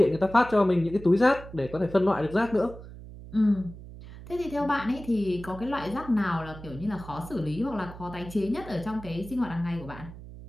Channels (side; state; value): right; noise; hum, 15 dB below the sound